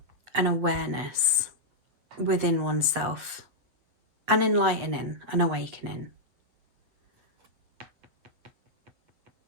an awareness within oneself, an enlightening, an awakening.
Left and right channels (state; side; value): late; left; 8.4 ms